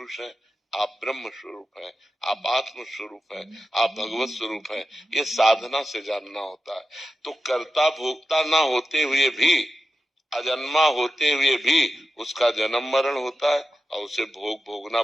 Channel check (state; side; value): normal; both; correlation 0.90